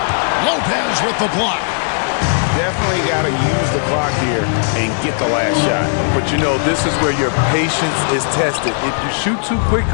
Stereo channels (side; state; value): right; silent; digital silence